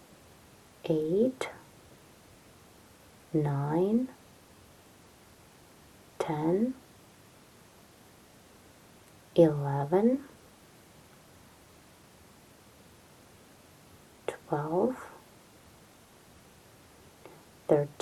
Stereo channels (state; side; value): identical; both; correlation 1.00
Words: 8, 9, 10, 11, 12,